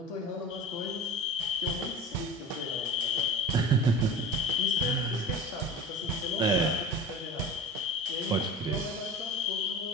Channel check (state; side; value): normal; both; correlation 0.35